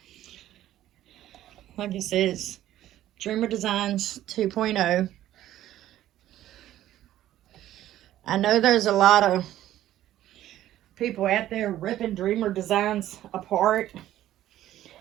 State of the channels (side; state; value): left; quieter; 13.2 dB